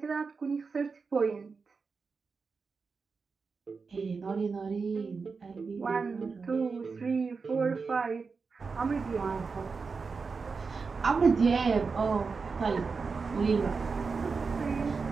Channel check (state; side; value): quieter; left; 4.8 dB